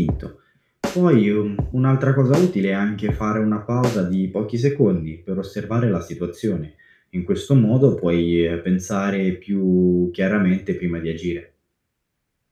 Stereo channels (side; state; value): both; identical; correlation 1.00